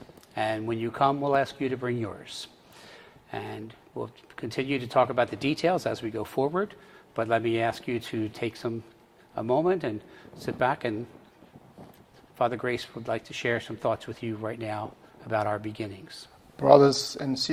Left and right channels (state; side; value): identical; both; correlation 1.00